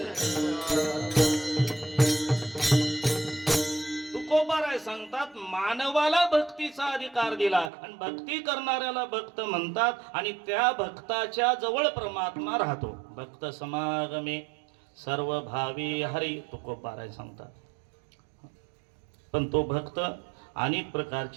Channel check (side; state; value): left; drops out; at 7.7 s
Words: तुकोबाराय सांगतात मानवाला भक्तीचा अधिकार दिला आणि भक्ती करणाऱ्याला भक्त म्हणतात आणि त्या भक्ताच्या जवळ परमात्मा राहतो. भक्त समागमे सर्व भावी हरी तुकोबाराय सांगतात. पण तो भक्त अनेक